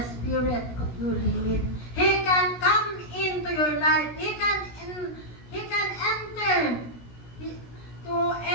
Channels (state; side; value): late; right; 17 ms